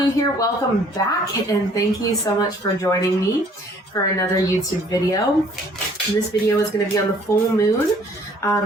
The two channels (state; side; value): normal; both; correlation 0.58